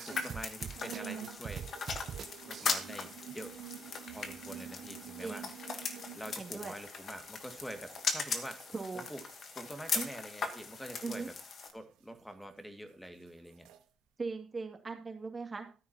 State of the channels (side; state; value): both; normal; correlation 0.78